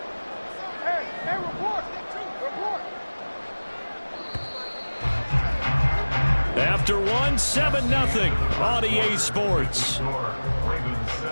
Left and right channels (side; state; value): both; inverted; correlation -1.00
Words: Hey, report. After 1, 7-0 on EA Sports. Ravens